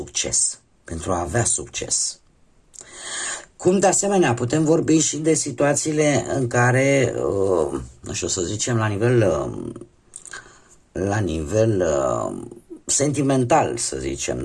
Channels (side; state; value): both; identical; correlation 1.00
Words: pentru a avea succes. Cum de asemenea putem vorbi și de situațiile în care, nu știu să zicem, la nivel sentimental, să zicem,